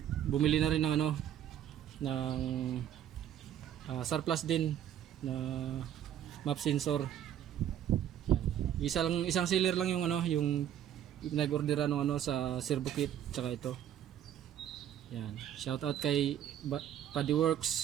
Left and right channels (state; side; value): quieter; left; 10.6 dB